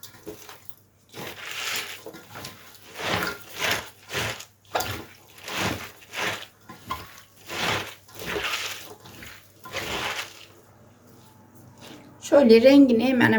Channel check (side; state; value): both; identical; correlation 1.00